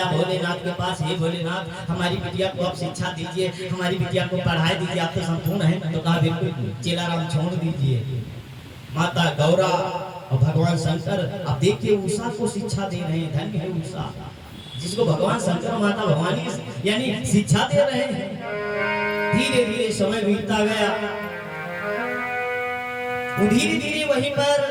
भोलेनाथ के पास, हे भोलेनाथ हमारी बिटिया को आप शिक्षा दीजिए, हमारी बिटिया को पढ़ाई दीजिए, आप तो संपूर्ण है। तो कहा बिल्कुल चेलाराम छोड़ दीजिए। माता गौरा और भगवान शंकर अब देखिए उषा को शिक्षा दे रहे हैं। धन्य है उषा जिसको भगवान शंकर और माता भवानी यानी शिक्षा दे रहे हैं। धीरे धीरे समय बीतता गया, धीरे धीरे वहीं पर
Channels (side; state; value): both; identical; correlation 1.00